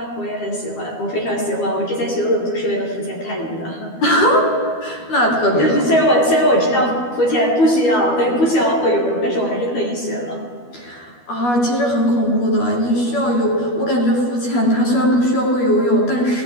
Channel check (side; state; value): right; late; 12 ms